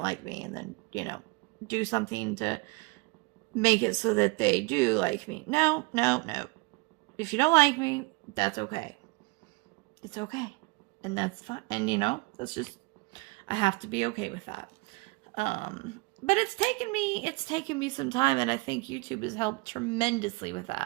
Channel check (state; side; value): quieter; left; 26.5 dB